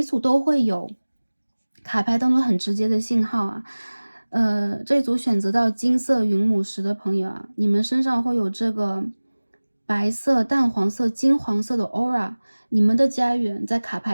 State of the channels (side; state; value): both; inverted; correlation -1.00